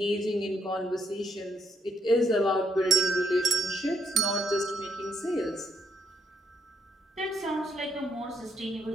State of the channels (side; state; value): both; normal; correlation 0.76